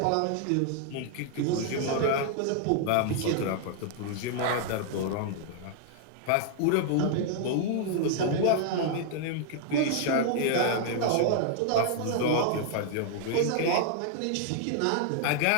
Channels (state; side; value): different; both; correlation -0.01